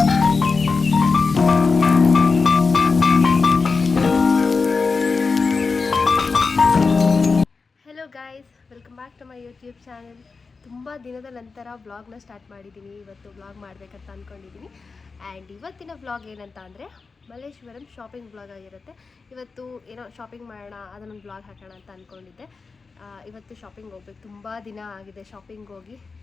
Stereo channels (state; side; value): quieter; right; 4.5 dB